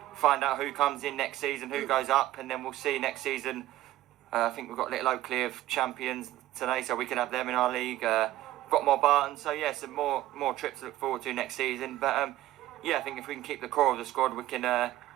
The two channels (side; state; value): left; quieter; 15.1 dB